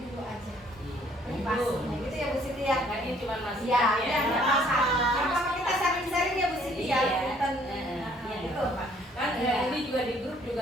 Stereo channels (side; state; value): both; normal; correlation 0.61